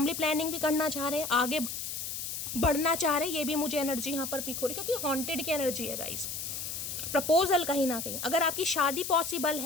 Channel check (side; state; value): left; noise; hiss, 5 dB below the sound